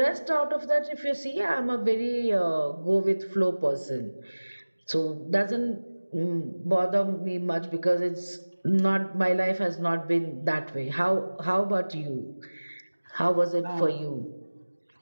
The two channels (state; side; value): inverted; both; correlation -1.00